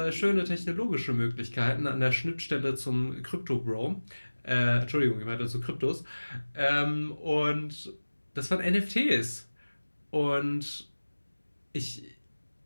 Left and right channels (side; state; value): both; inverted; correlation -1.00